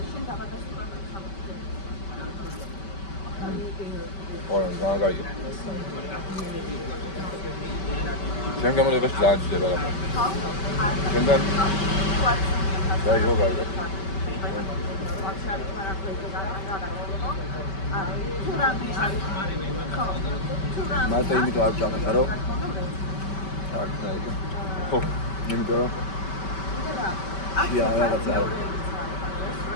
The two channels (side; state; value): right; late; 5.2 ms